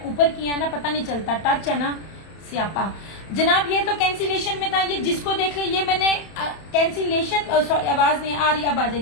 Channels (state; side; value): late; right; 31 ms